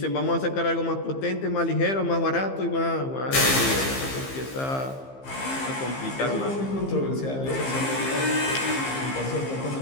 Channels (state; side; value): late; right; 15 ms